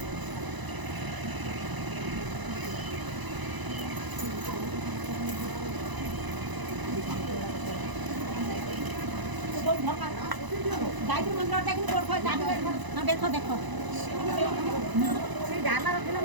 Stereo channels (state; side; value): late; left; 1.0 ms